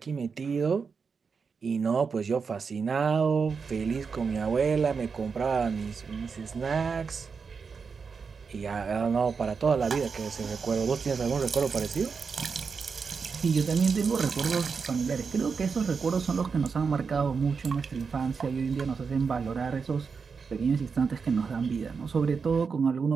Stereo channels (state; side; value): quieter; left; 5.5 dB